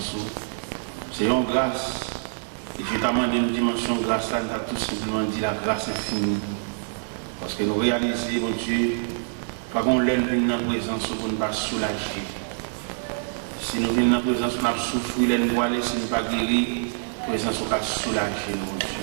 C'est une grâce. Et je t'amène une dimension de grâce là, nous avons tout simplement dit la grâce infinie. Parce que nous réalisons, mon Dieu, pas qu'on l'aime dans la présence pour ne pas soulager. Si nous venons dans la présence, on a souffert, nous voiler, si nous ne pas guérir, la présence on va soulager, mon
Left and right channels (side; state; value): left; silent; digital silence